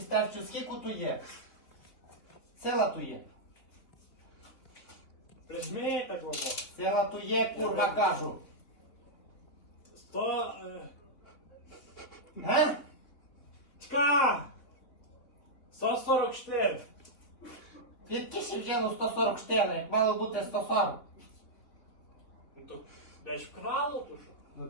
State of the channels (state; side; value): late; right; 3.5 ms